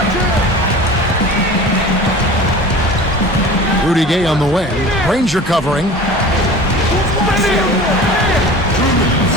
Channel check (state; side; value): normal; both; correlation 0.38